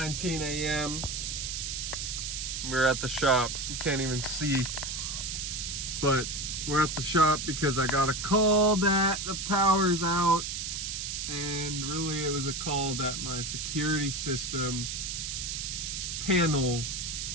a.m. We're at the shop. You can't even see, but we're at the shop because I got a call that the power's out, and really it was a call that my security system panel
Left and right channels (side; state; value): right; noise; hiss, 4 dB below the sound